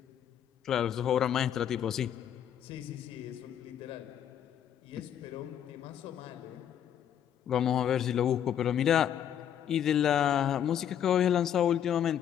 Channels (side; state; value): right; quieter; 9.6 dB